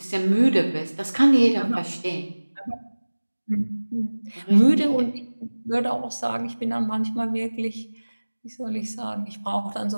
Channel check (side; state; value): both; inverted; correlation -1.00